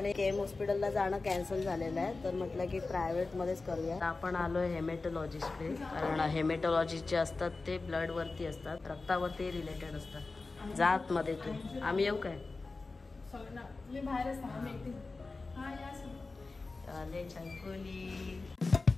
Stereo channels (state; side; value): quieter; right; 3.7 dB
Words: केम हॉस्पिटलला जाणं कॅन्सल झालेलं आहे, तर म्हटलं की प्रायव्हेटमध्येच करूया। आपण आलोय हेमॅटॉलॉजिस्टकडे, कारण हेमॅटॉलॉजिस्ट जे असतात ते ब्लड वरती असतात, रक्तावरती रिलेटेड असतात। जात मध्ये तू आम्ही येऊ काय?